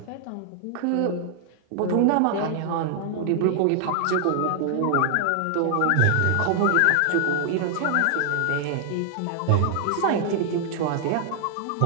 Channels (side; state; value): both; different; correlation 0.00